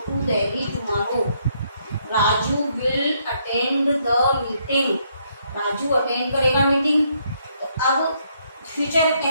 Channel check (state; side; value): inverted; both; correlation -0.72